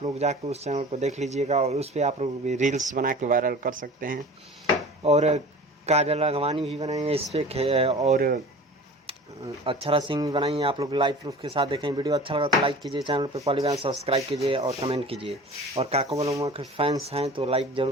लोग जाकर उस चैनल को देख लीजिएगा और उस पर आप लोग भी रील्स बना के वायरल कर सकते हैं। और काजल राघवानी भी बनाई है इस पर, और अक्षरा सिंह भी बनाई है। आप लोग लाइव प्रूफ के साथ देखें। वीडियो अच्छा लगा तो लाइक कीजिए, चैनल पर पहली बार सब्सक्राइब कीजिए और कमेंट कीजिए। और काको बलुआ के फैंस हैं तो लाइक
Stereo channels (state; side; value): normal; both; correlation 0.40